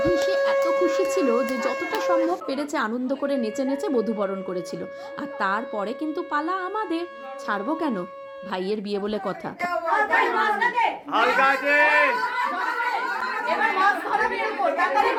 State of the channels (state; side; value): identical; both; correlation 1.00